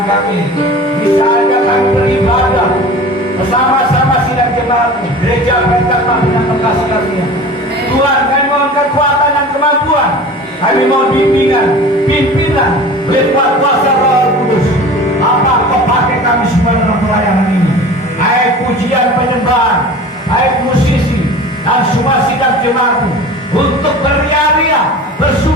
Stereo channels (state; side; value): normal; both; correlation 0.38